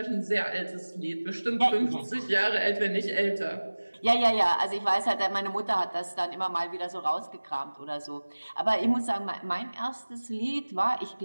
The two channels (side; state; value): both; inverted; correlation -1.00